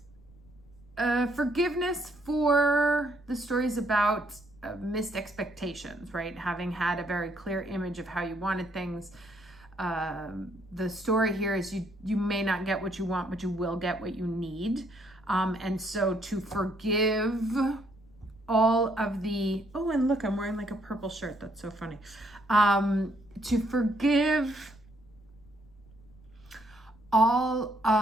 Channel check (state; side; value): noise; left; rumble, 26 dB below the sound